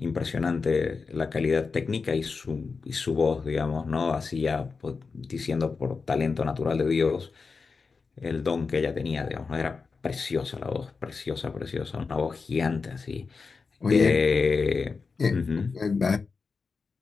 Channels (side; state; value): right; quieter; 4.7 dB